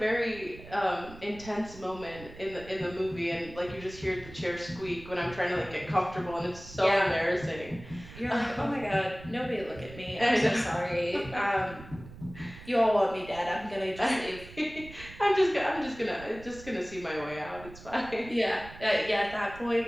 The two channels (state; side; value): noise; right; rumble, 17 dB below the sound